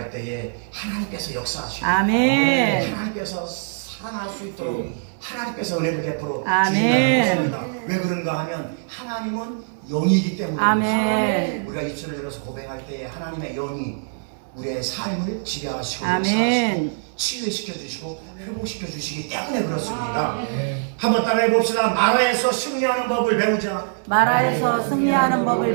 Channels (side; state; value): left; silent; digital silence